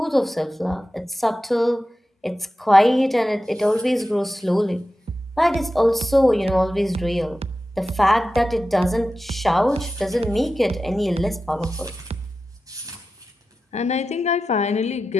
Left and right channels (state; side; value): normal; both; correlation 0.93